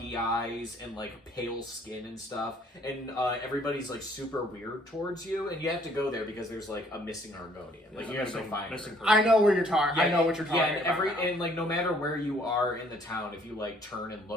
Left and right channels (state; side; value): normal; both; correlation 0.62